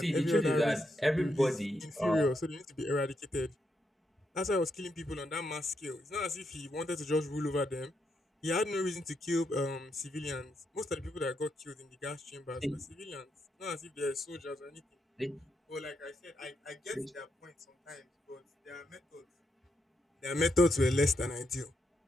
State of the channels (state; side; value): normal; both; correlation 0.81